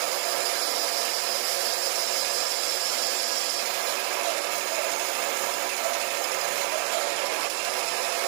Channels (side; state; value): left; silent; digital silence